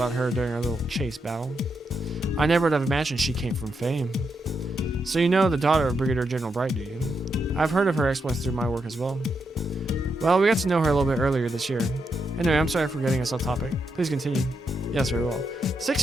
her during our little chase battle. I never would have imagined she came from fame. So you know the daughter of Brigadier General Bright, do you? I've heard of her exploits through my work as well. Well, we got to know her a little bit earlier this year. Anyway, I'm sorry for getting us off topic. Please continue. Yes, very well. 6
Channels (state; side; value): normal; both; correlation 0.82